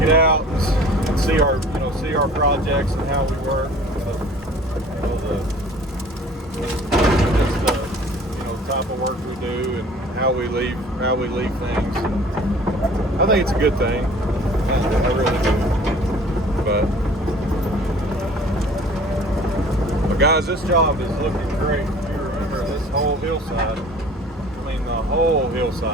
it out and see our projects and how we work. Type of work we do and how we leave things. I think it's a good thing. I really do. But guys, this job is looking great. If you remember this whole hillside, I mean the whole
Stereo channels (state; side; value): normal; both; correlation 0.49